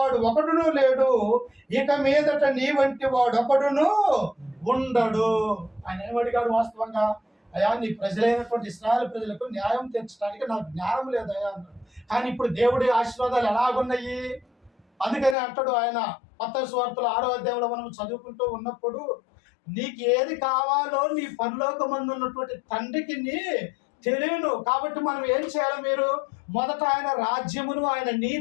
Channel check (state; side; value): drops out; right; at 15.4 s